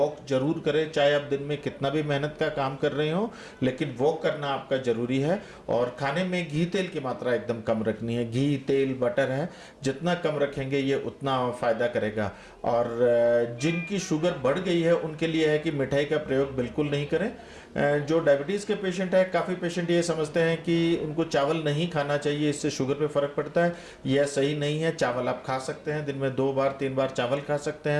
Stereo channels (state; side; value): identical; both; correlation 1.00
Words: जरूर करें। चाहे आप दिन में कितना भी मेहनत का काम कर रहे हो, लेकिन वॉक करना आपका ज़रूरी है। और खाने में घी तेल की मात्रा एकदम कम रखनी है। घी, तेल, बटर है, जितना कम रखेंगे ये उतना फ़ायदा करेगा। और जिनकी शुगर बढ़ गई है उनके लिए है कि मिठाई का प्रयोग बिल्कुल नहीं करें। जो डायबिटीज़ के पेशेंट है, काफ़ी पेशेंट ये समझते हैं कि उनको चावल नहीं खाना चाहिए, इससे शुगर पे फ़र्क पड़ता है। यह सही नहीं है। चावल आप खा सकते हैं, दिन में 2 बार 3 बार चावल खा सकते